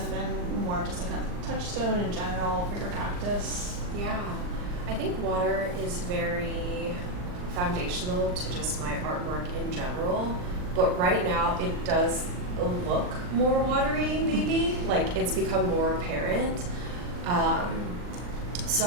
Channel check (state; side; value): late; left; 39 ms